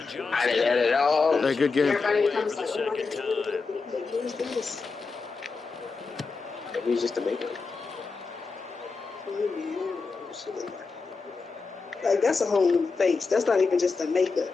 Johnson. I didn't edit it all. Hey, good game. Everybody For comes the like, oh my second time. God, who's this? Maybe it's just a makeup. Like, that's a whole new face. That's not even just a makeup.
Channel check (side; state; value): right; quieter; 4.4 dB